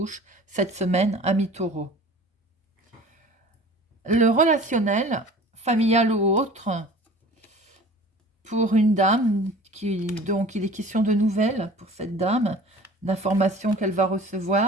cette semaine, amis taureaux. Le relationnel, familial ou autre, pour une dame, donc il est question de nouvelles pour cette dame, d'informations qu'elle va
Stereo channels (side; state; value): both; normal; correlation 0.43